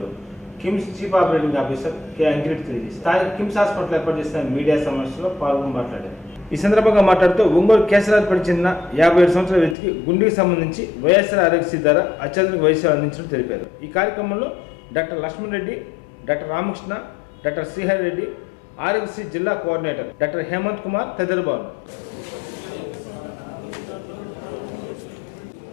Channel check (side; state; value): right; drops out; at 9.8 s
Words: KIMS chief operating officer K Ankireddy తెలియజేశారు. స్థానిక కిమ్స్ హాస్పిటల్ ఏర్పాటు చేసిన మీడియా సమావేశంలో పాల్గొని మాట్లాడారు. ఈ సందర్భంగా మాట్లాడుతూ ఒంగోలు కేసరాజుపేట చెందిన 57 సంవత్సరాల వ్యక్తికి గుండెకి సంబంధించి వైఎస్ఆర్ ఆరోగ్యశ్రీ ద్వారా అత్యాధునిక వైద్య సేవలు అందించినట్లు తెలిపారు. ఈ కార్యక్రమంలో doctor Lakshman Reddy, doctor Ramakrishna, doctor Srihari Reddy, Aarogyasri జిల్లా కోఆర్డినేటర్ డాక్టర్ హేమంత్ కుమార్ తదితరులు పాల్గొన్నారు.